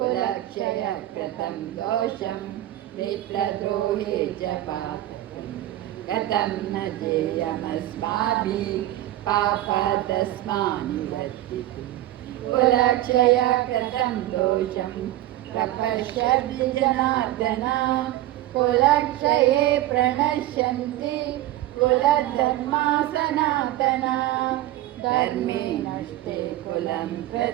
कृतं दोषं मित्रद्रोहे च पातकं कथं न जेयमस्माभिः पापादस्मानुवर्तितुं कुलक्षय कृतं दोषं प्रपश्यति जनार्दन कुलक्षये प्रणश्यन्ति कुलधर्मा सनातना धर्मे नष्टे कुलं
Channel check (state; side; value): quieter; left; 14.7 dB